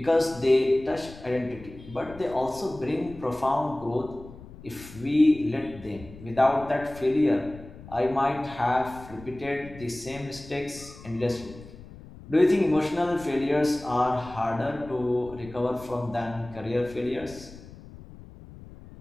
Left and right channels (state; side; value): noise; left; rumble, 17 dB below the sound